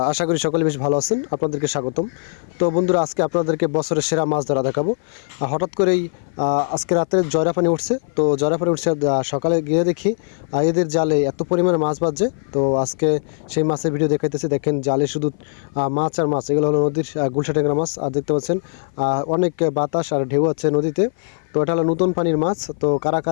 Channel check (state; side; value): silent; right; 56 dB below the other